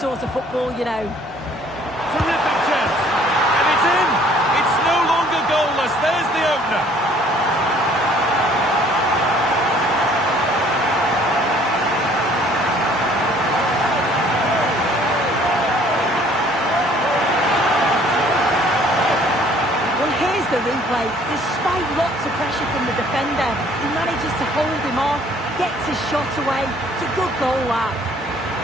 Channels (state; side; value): normal; both; correlation 0.57